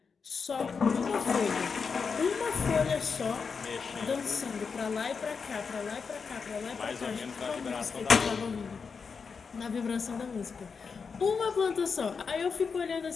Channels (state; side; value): quieter; right; 5.4 dB